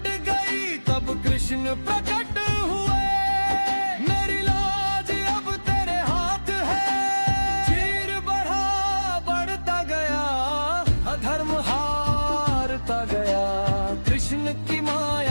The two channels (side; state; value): both; inverted; correlation -1.00